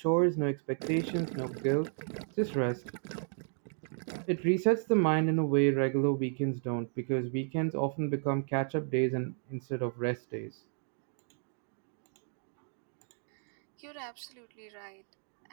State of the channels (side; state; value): left; silent; 56 dB below the other